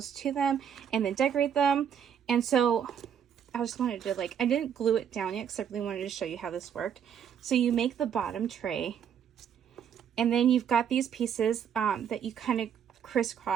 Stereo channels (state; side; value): quieter; left; 8.4 dB